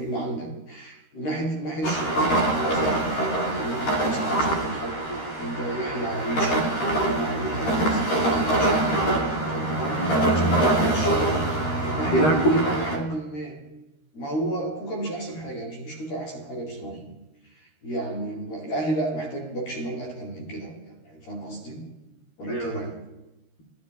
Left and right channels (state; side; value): late; right; 13 ms